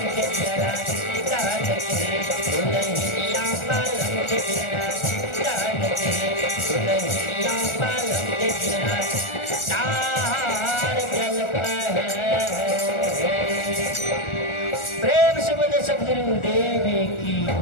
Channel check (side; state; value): right; late; 1.4 ms